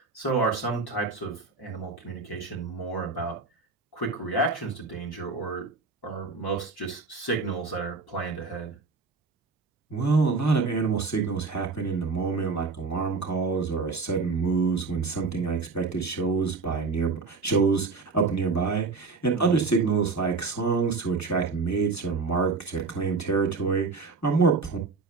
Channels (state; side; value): quieter; left; 4.3 dB